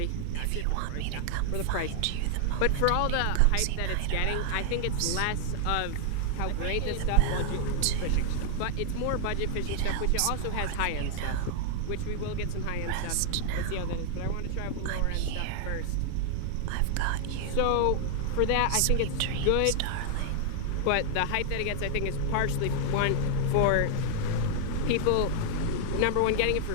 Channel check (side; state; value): both; different; correlation 0.00